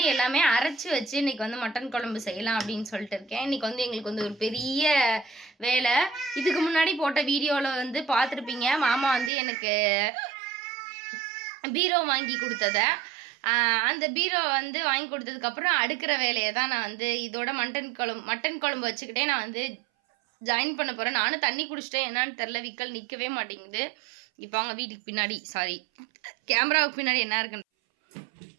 எல்லாமே அரைச்சி வச்சு இன்றைக்கி வந்து மட்டன் குழம்பு செய்யலாம் அப்படின்னு சொல்லிட்டு இருக்கேன். இன்றைக்கி வந்து எங்களுக்கு வந்து ஒரு பெரிய வேலை. இதுக்கு முன்னாடி போட்ட வீடியோவில் வந்து பார்த்துருப்பீங்க, மாமா வந்து எனக்கு பீரோ வாங்கி கொடுத்ததை. அந்த பீரோ வந்து வாங்கி கொடுத்ததுக்கப்புறம் அடுக்கிற வேலையை தான் நான் வந்து இதோட மட்டன் குழம்பு வச்சுக்கிட்டே நான் வந்து ஜாயின் பண்ண போகிறேன். நானும் தண்ணி குடிச்சிட்டேன், என்னான்னு தெரில, விக்கல் நிற்கவே மாட்டேங்குது. இப்போ அவங்க வீட்டுக்கு பின்னாடி கேமராவுக்கு பின்னாடி என்ன இருக்குன்னு,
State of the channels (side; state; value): left; drops out; at 9.3 s